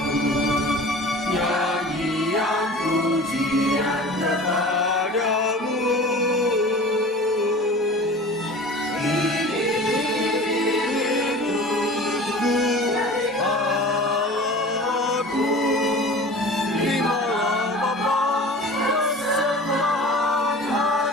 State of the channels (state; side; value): normal; both; correlation 0.40